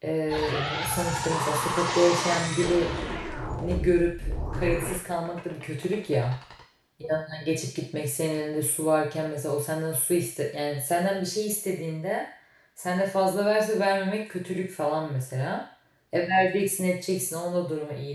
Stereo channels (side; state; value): both; identical; correlation 1.00